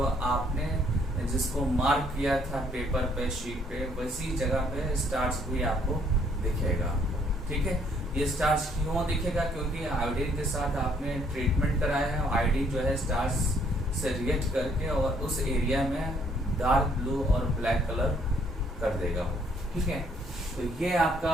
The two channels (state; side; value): normal; both; correlation 0.65